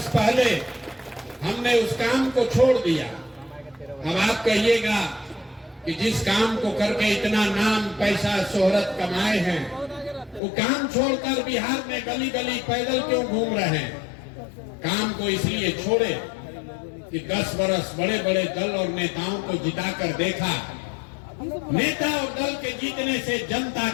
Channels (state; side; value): drops out; right; at 10.4 s